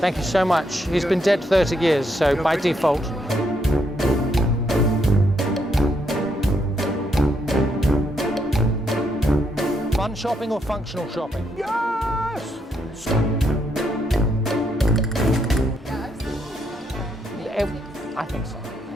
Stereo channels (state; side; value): normal; both; correlation 0.76